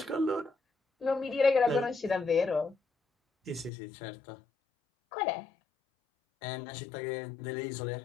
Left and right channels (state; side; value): drops out; right; at 3.7 s